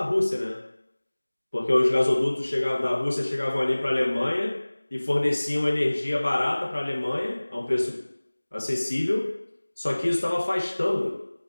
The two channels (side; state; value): both; inverted; correlation -1.00